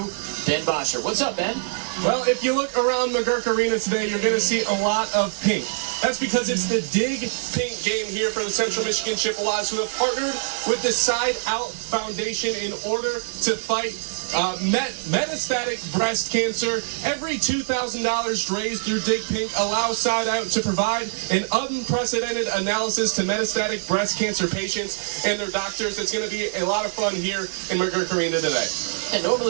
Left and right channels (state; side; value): silent; left; digital silence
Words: Ben Bosher. What's up, Ben? Well, if you look around McGurk Arena today, you're going to see a lot of pink. That's because it's the Dig Pink game here for the Central Michigan Chippewas, who have partnered with the Side Out Foundation in order to fight metastatic breast cancer. Every $2,000 raised through Dig Pink allows Side Out to provide an unprecedented analysis to metastatic breast cancer patients and their doctors. It's going to be a lot of fun here in McGurk Arena today. And